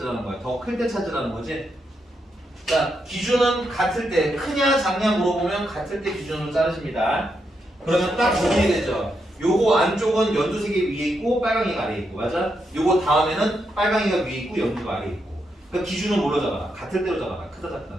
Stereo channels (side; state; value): both; normal; correlation 0.82